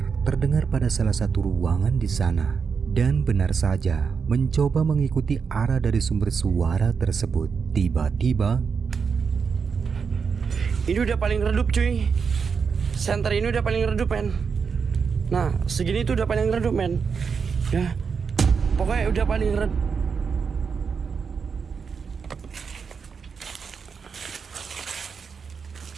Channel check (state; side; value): quieter; left; 5.9 dB